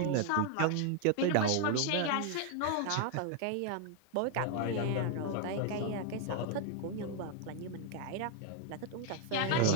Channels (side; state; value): both; different; correlation 0.00